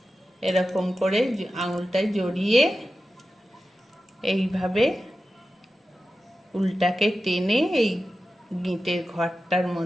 এরকম করে আঙুলটায় জড়িয়ে এইভাবে উল্টাকে টেনে এই গিঁটের ঘরটার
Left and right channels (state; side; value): normal; both; correlation 0.93